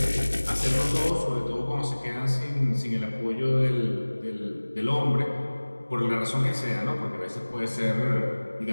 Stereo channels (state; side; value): inverted; both; correlation -1.00